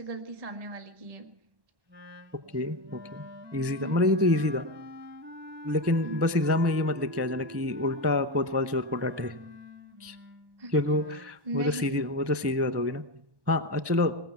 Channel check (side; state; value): left; late; 1.1 ms